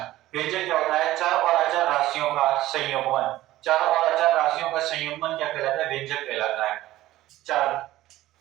व्यंजक क्या होता है? चर और अचर राशियों का संयोगन। चर और अचर राशियों का संयोगन क्या कहलाता है? व्यंजक कहलाता है। चर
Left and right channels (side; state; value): left; quieter; 15.7 dB